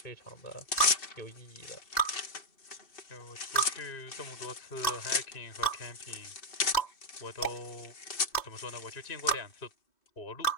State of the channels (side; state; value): right; late; 2.6 ms